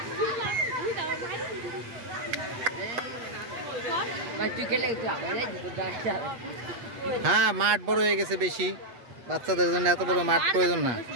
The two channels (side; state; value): left; late; 8.4 ms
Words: हाँ माठ बड़ हो गए बेशी বাচ্চাদের জন্য এত বড় মাঠ প্রয়োজন না